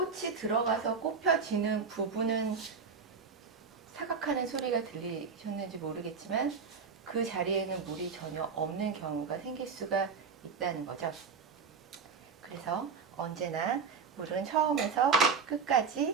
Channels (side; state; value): left; quieter; 5.5 dB